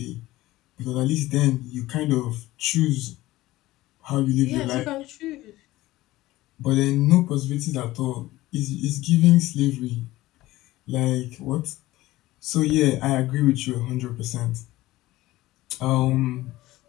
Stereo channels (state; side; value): quieter; right; 17.4 dB